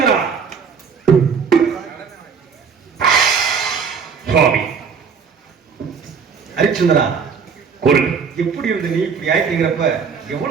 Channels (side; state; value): left; quieter; 6.1 dB